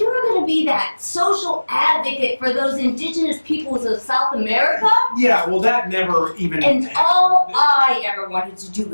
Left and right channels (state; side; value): inverted; both; correlation -1.00